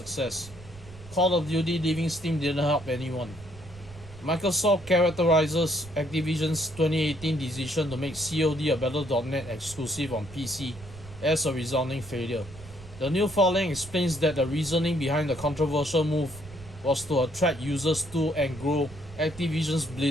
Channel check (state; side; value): noise; right; rumble, 18 dB below the sound